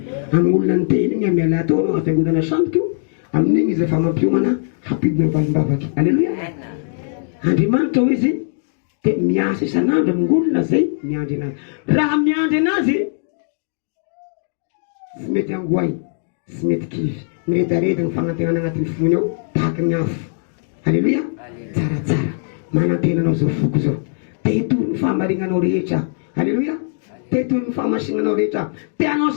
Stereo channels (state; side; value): silent; right; digital silence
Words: Amin'ny olona ny teny igny miala atao anao afiangodana samboka io amin'igny izy efa mampiomana hampidina valim-bavaky. Halleluja. Andriamanitra ho izy dia miasa isan'andro amin'ny olona zay miandry anazy. Raha miandry anazy sy mety angoay sy mety kivy miredareda ny fagnantenana agnatin'ny fony ao tahaky ny afo. Halleluja. Tsaratsara manantenanao zao foko zao tehitory ny fahamarinanao rehetra. Halleluja. Tehitory ny fahamasinanao rehetra teanao